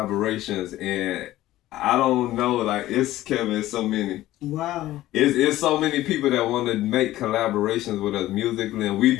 and I don't know, like it's so many. Wow. It's so many people that want to make collaborations with us musically, and we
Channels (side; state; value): right; quieter; 15.3 dB